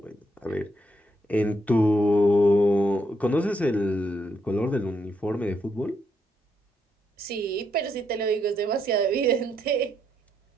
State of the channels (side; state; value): both; normal; correlation 0.77